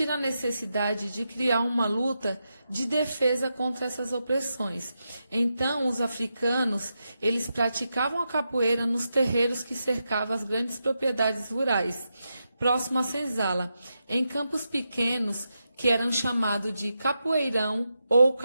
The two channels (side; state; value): both; inverted; correlation -0.87